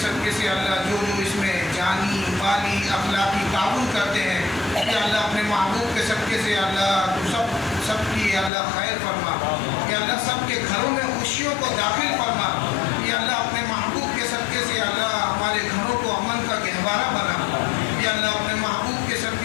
صدقے سے اللہ جو اس میں جانی مالی اخلاقی تعاون کرتے ہیں یا اللہ اپنے محبوب کے صدقے سے اللہ تو سب کی اللہ خیر فرما. یا اللہ سب کے گھروں میں خوشیوں کو داخل فرما. یا اللہ اپنے محبوب کے صدقے سے اللہ ہمارے گھروں کو امن کا گہوارہ بنا. یا اللہ اپنے محبوب کے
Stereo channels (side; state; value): right; drops out; at 8.5 s